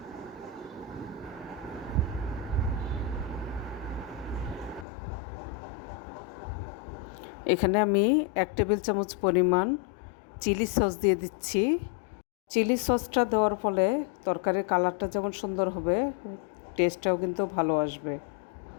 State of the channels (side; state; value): right; drops out; at 4.9 s